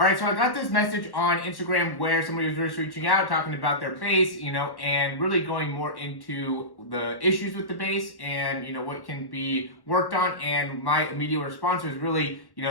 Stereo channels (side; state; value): right; late; 1.1 ms